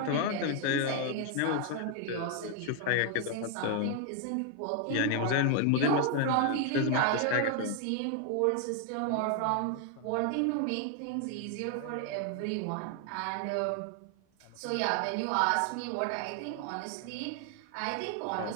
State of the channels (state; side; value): different; both; correlation 0.00